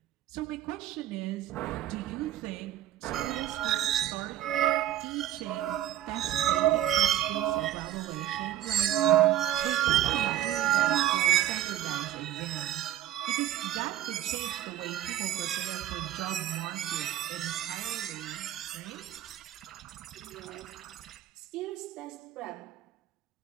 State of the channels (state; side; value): quieter; left; 12.6 dB